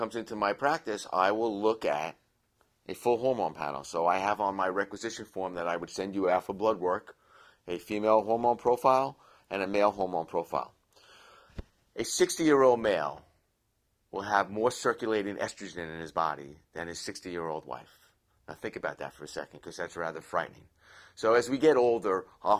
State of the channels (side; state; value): both; identical; correlation 1.00